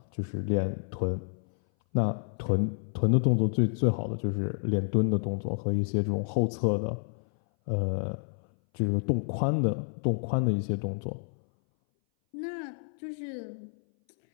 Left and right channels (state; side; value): silent; right; 58 dB below the other